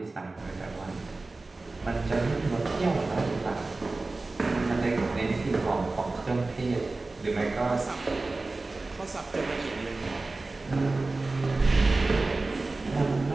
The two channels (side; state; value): left; quieter; 3.4 dB